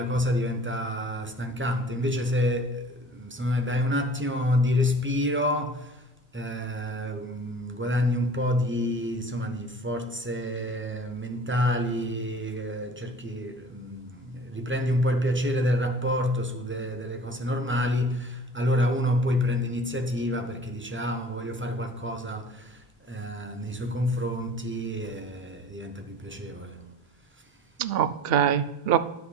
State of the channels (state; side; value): normal; both; correlation 0.45